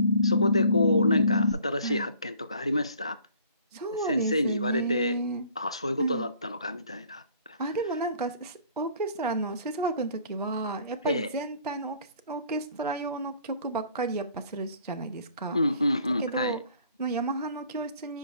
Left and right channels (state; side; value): inverted; both; correlation -0.56